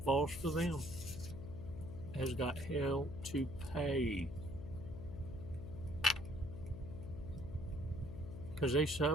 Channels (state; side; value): noise; left; hum, 9 dB below the sound